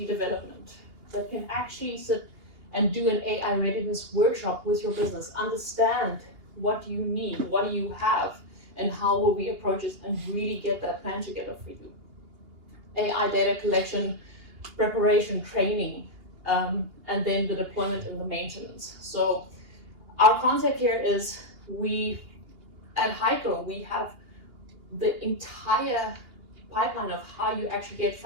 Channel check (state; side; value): late; left; 2.8 ms